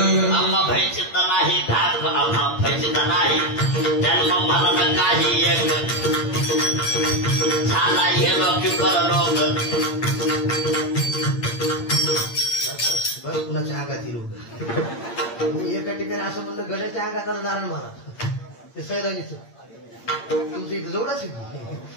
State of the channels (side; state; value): right; late; 8.7 ms